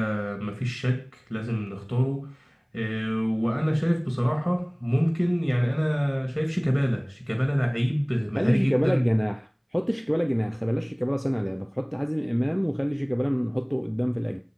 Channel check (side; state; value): both; identical; correlation 1.00